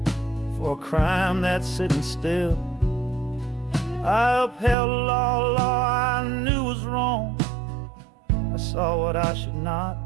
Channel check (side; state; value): left; drops out; at 4.8 s